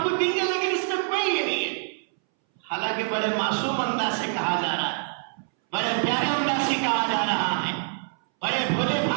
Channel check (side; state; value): left; silent; 61 dB below the other